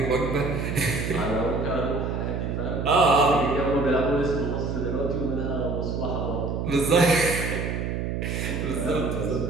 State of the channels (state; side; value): noise; right; hum, 2 dB below the sound